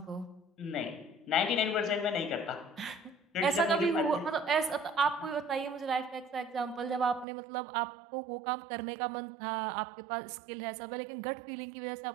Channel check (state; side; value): drops out; left; at 7.2 s